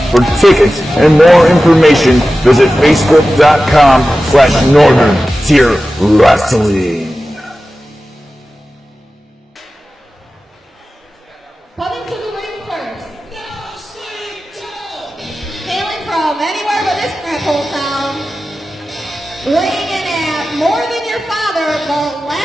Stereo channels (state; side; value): normal; both; correlation 0.94